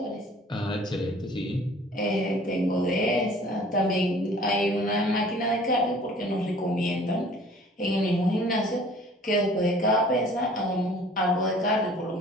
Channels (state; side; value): normal; both; correlation 0.51